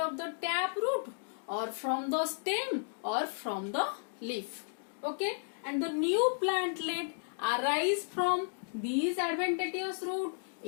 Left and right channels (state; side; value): silent; right; digital silence